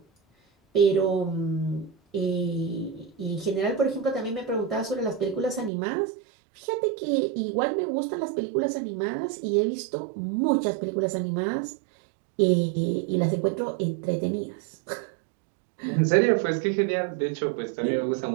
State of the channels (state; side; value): drops out; left; at 5.7 s